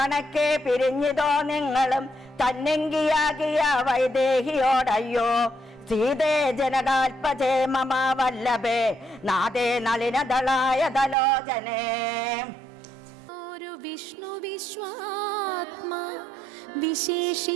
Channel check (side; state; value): left; drops out; at 11.2 s